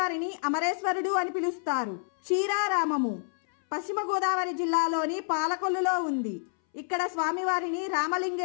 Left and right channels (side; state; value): right; silent; 59 dB below the other